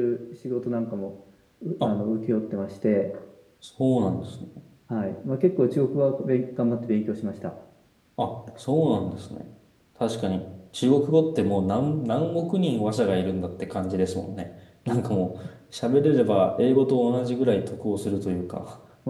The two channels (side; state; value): both; identical; correlation 1.00